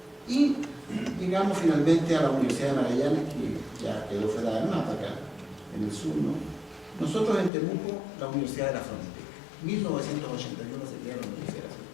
y llegamos finalmente a la Universidad de Magallanes, que ya quedó fuera del mapa acá, en el sur, ¿no? Nosotros en Temuco, la Universidad de la Frontera. 1981 se crea la Universidad de la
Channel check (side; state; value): right; drops out; at 7.5 s